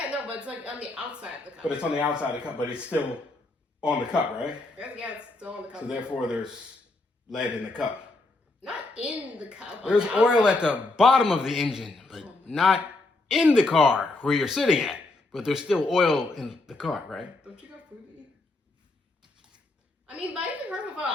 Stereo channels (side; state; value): right; quieter; 3.1 dB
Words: no, but it's like on the outside of the cup. But it's on the outside of the cup, but it's still on the cup, right? Yeah, it's still on the cup. So therefore, there's lead in the cup. Not in the cup. on There's the oil outside. at the bottom of the engine, but not in the car where you're sitting at. But there's still oil in the car, right? Don't you got food to eat? I mean, but I even heard about.